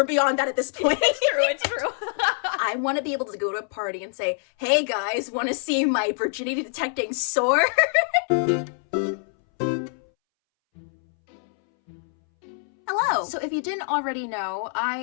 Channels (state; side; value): silent; right; 62 dB below the other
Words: beyond that at this point. It's true. I want to be able to go to a party and say, hey guys, want to see my virginity detecting sword? Hello! So if you didn't already know,